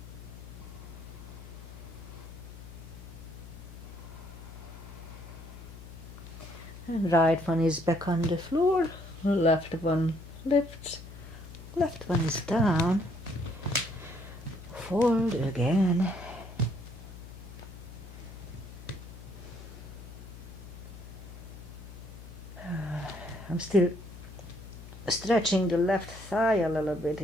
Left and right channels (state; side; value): noise; left; hum, 14 dB below the sound